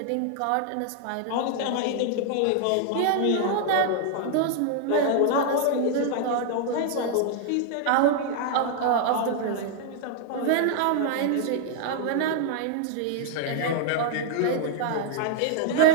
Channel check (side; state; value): both; different; correlation 0.00